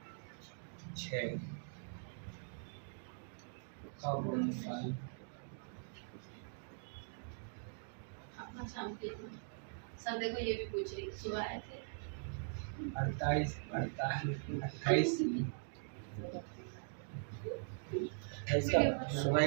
6 का गुणनफल सर देखो ये भी पूछ रही, सुबह आए थे 28 का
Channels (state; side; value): silent; left; digital silence